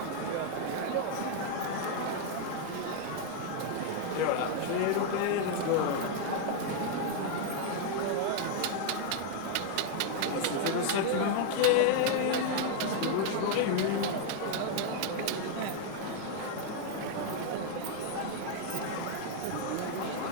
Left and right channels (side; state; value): both; different; correlation 0.00